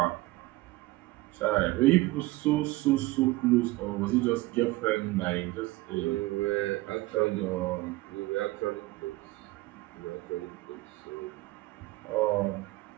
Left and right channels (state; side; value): quieter; left; 19.9 dB